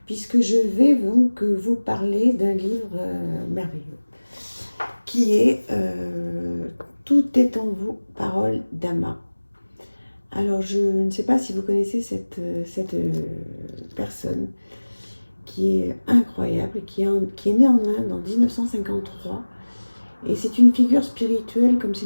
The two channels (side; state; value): both; inverted; correlation -1.00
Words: puisque je vais donc vous parler d'un livre merveilleux qui est Tout est en vous, parole d'Ama. Alors je ne sais pas si vous connaissez cette personne qui est incroyable, qui est née en Inde en 1953. Et c'est une figure spirituelle, comme c'est